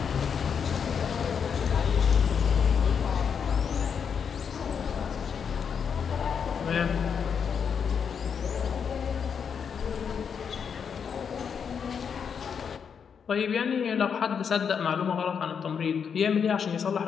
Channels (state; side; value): quieter; right; 6.9 dB